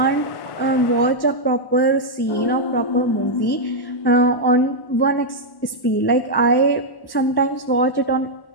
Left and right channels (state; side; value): late; right; 1.1 ms